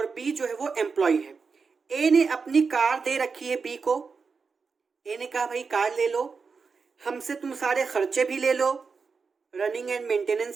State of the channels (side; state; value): left; quieter; 5.1 dB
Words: बी जो है वो एम्प्लॉय है। ए ने अपनी कार दे रखी है बी को। ए ने कहा भाई कार ले लो, हमसे तुम सारे खर्चे भी ले लो, रनिंग एंड